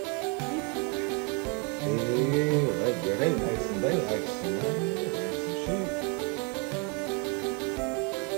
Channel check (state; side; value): quieter; left; 34.1 dB